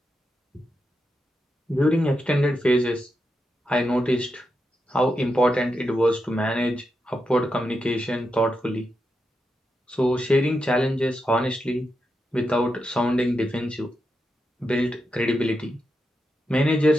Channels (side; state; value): both; normal; correlation 0.86